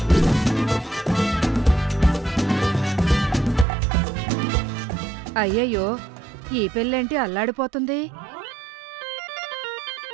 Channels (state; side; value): drops out; left; at 3.7 s